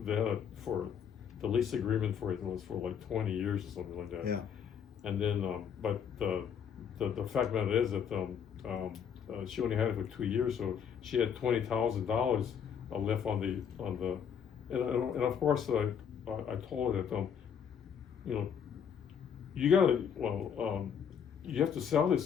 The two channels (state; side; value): quieter; right; 7.7 dB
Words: the lease agreement for it was for like 20 years or something like that. Yeah. And then, but the fact of it is that she only had it for 2 years, so she had $20,000 left on the, and of course I told her that you have to sell